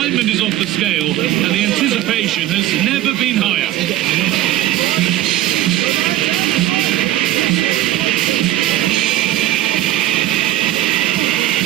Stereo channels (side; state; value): left; quieter; 14.0 dB